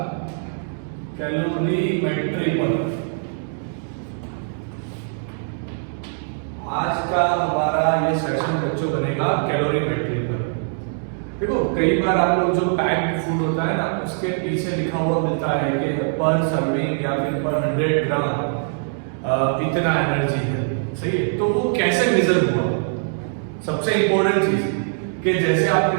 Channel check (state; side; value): silent; left; digital silence